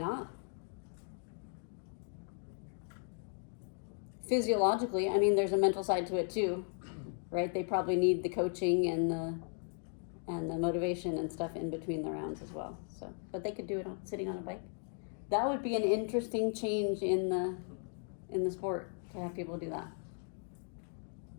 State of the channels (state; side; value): silent; right; 53 dB below the other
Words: Physiologically, I mean, there's a mental side to it too, right? They probably need the coaching and the motivation and stuff in between the rounds as well. So, but they could do it sitting on a bike. That would be an interesting change in the sport to have people do that.